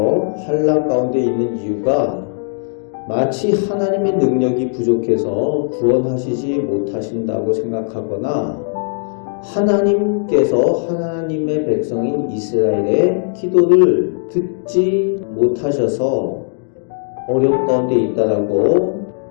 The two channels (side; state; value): right; silent; digital silence